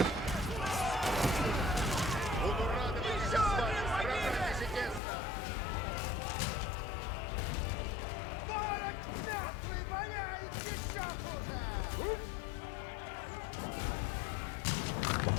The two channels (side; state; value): right; drops out; at 5.0 s